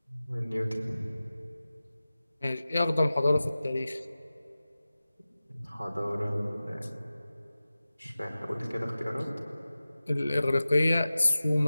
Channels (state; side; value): inverted; both; correlation -0.96